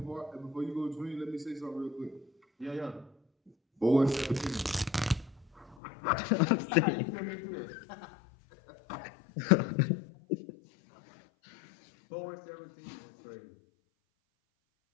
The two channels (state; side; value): drops out; right; at 5.8 s